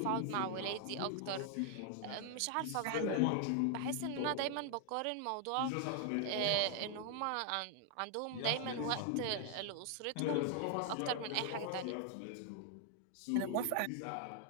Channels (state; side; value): different; both; correlation 0.00